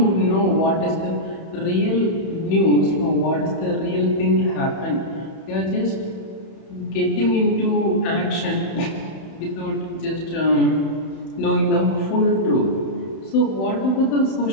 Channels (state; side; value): late; right; 31 ms